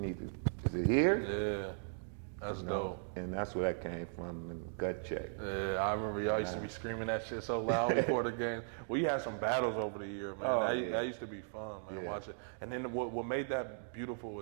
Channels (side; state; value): left; silent; digital silence